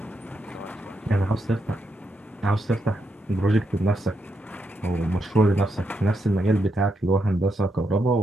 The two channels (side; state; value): both; normal; correlation 0.81